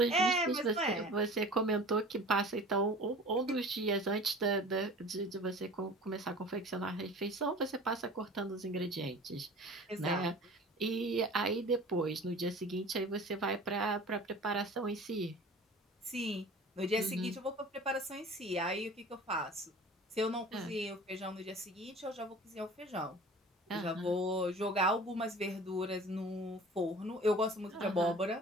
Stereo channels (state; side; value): normal; both; correlation 0.42